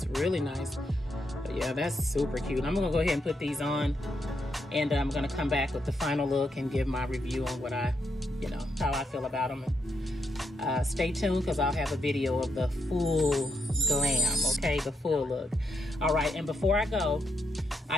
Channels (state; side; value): normal; both; correlation 0.80